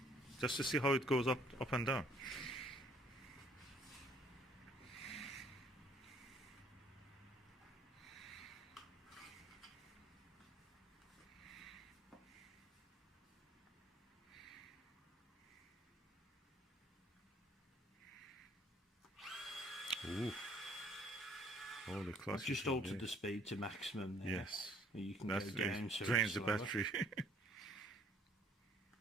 Just to see how it goes up and down. Ooh. Holy class. I've just altered the speed to maximum there. Yes. You can go down so drains the battery.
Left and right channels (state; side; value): normal; both; correlation 0.60